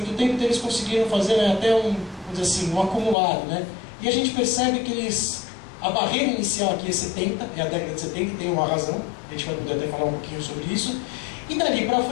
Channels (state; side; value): drops out; right; at 3.2 s